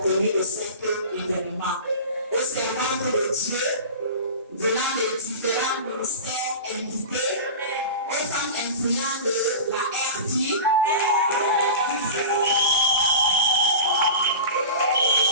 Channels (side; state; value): both; inverted; correlation -0.31